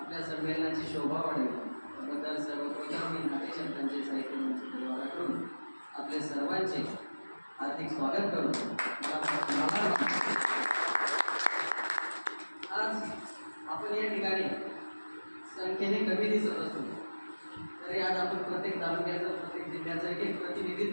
संमेलनाची शोभा वाढेल त्याबद्दल सर्वप्रथम मी नाट्यशब्दांचे साहित्य मंच परिवाराकडून आपले सर्वांचे हार्दिक स्वागत करतो. आज आपण या ठिकाणी संख्येने कमी दिसत असतो तरी आज आपण प्रत्येक तालुक्याचं, प्रत्येक जिल्ह्याचं एक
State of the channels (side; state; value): both; inverted; correlation -1.00